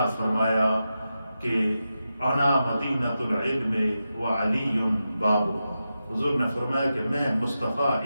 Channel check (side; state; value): both; inverted; correlation -0.90